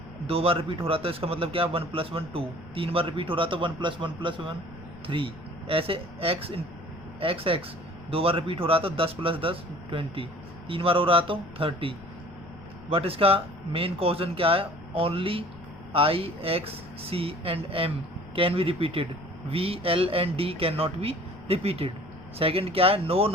2 बार रिपीट हो रहा था, इसका मतलब क्या, 1 + 1 2। 3 बार रिपीट हो रहा था, 1 + 1 + 1 3। ऐसे एक्स 2 बार रिपीट हो रहा था, 10 + 10 20। 3 बार हो रहा तो 30। बट इसका मेन क्वेश्चन क्या है, only I X C and M can be repeated, V L and D can not be repeated. Second क्या है, no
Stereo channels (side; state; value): left; noise; rumble, 20 dB below the sound